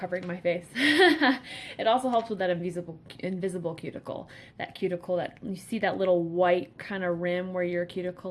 my face. It also helps with that invisible cuticle. That cuticle that you see, that little white kind of rim where your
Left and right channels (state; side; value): identical; both; correlation 1.00